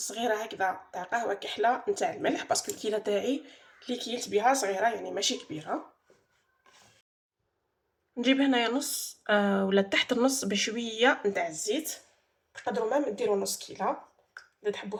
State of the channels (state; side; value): identical; both; correlation 1.00